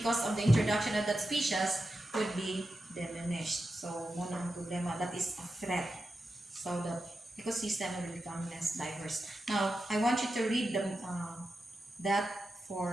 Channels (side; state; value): both; normal; correlation 0.90